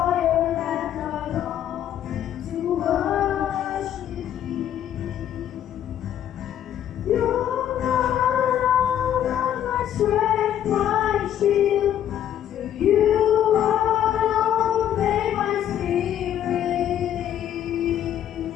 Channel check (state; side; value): quieter; right; 10.6 dB